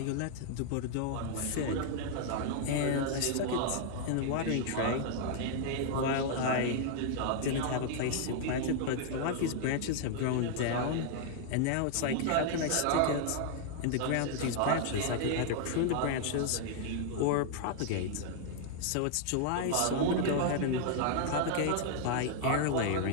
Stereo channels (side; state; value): both; different; correlation 0.00